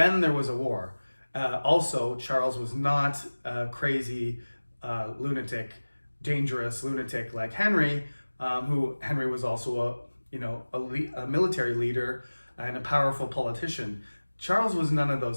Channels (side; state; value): both; inverted; correlation -1.00